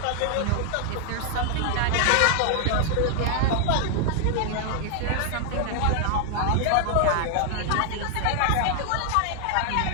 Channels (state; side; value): different; both; correlation 0.00